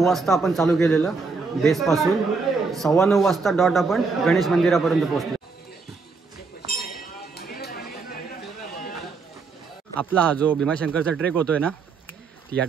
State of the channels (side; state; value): left; quieter; 4.5 dB